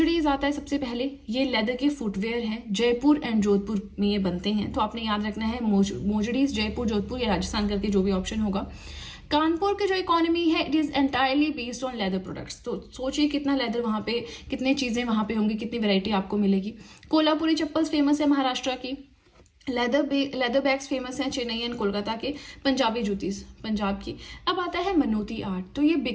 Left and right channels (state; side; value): identical; both; correlation 1.00